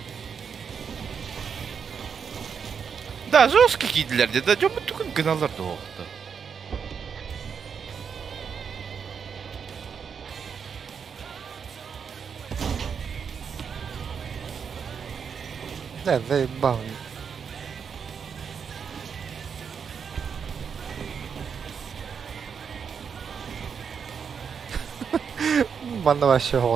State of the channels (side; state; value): left; quieter; 6.7 dB